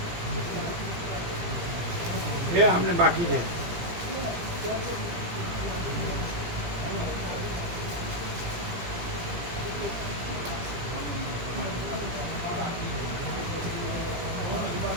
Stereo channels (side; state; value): left; late; 18 ms